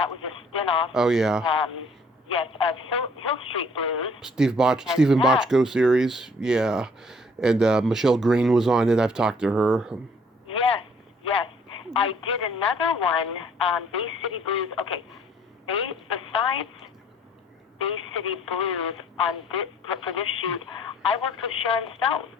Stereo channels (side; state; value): both; normal; correlation 0.59